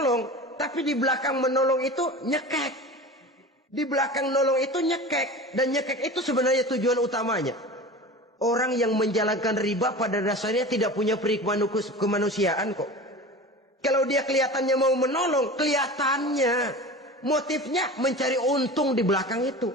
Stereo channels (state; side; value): normal; both; correlation 0.33